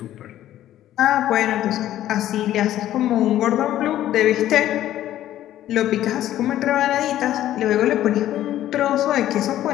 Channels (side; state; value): right; quieter; 12.9 dB